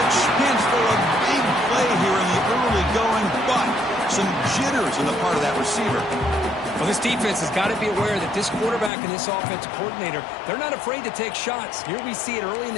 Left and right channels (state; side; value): drops out; right; at 8.9 s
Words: chance for a big play here in the early going, but some jitters in the part of that receiver. Well, this defense has got to be aware that this quarterback and this offensive coordinator, they're not afraid to take shots. Here we see it early in